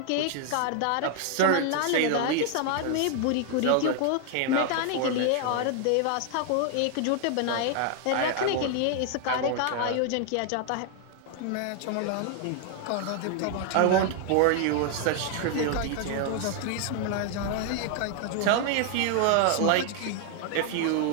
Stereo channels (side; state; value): both; different; correlation 0.00